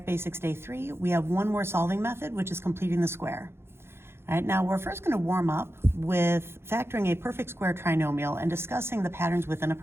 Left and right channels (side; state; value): left; late; 0.12 ms